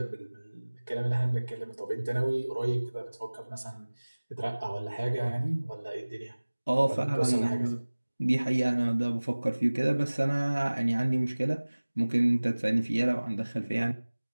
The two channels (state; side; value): inverted; both; correlation -1.00